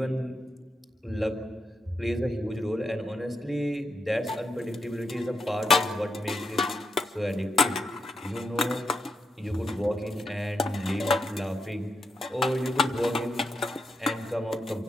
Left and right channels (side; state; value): both; normal; correlation 0.83